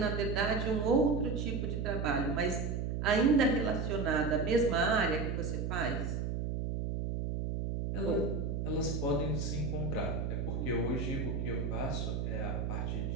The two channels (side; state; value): right; noise; hum, 1 dB below the sound